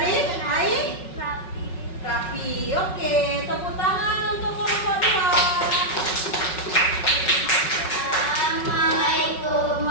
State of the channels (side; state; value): right; late; 5.4 ms